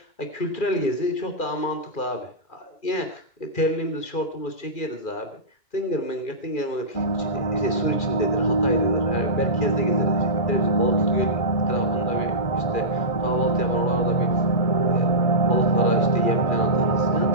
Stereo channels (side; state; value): right; late; 2.4 ms